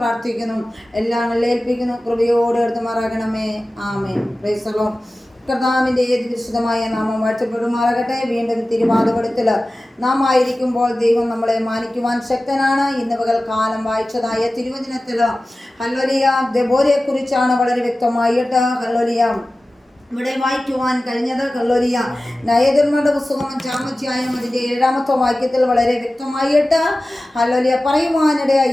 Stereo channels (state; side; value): normal; both; correlation 0.96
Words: പ്രാർത്ഥിക്കുന്നു. എല്ലാം ഏൽപ്പിക്കുന്നു. കൃപയോടെ എടുത്തുമാറാകണമേ. ആമേൻ. Praise the Lord. കർത്താവിൻ്റെ ഏത് വിശുദ്ധമായ നാമം വാഴ്ത്തപ്പെടുമാറാകട്ടെ. വീണ്ടും തിരുവാതിപടത്തിൽ നാം ആയിരിക്കുമ്പോൾ ദൈവം നമ്മളെ മാനിക്കുവാൻ ശക്തനാണ്. ഇന്ന് പകൽക്കാലം വായിച്ചതായ തിരുവചനത്തിൽ ഹല്ലേലൂയ ദെബോരയെക്കുറിച്ചാണ് വളരെ വ്യക്തമായിട്ട് ഹല്ലേലൂയ ഇവിടെ വായിക്കുവാൻ കഴിഞ്ഞത്. ഹല്ലേലൂയ ന്യായാധിപന്മാരുടെ പുസ്തകം 5-ാം അധ്യായം അതിൻ്റെ 7-ാമത്തെ വാക്യത്തിൽ വളരെ വ്യക്തമായിട്ട് ഹല്ലേലൂയ പറയുവാനിടയായി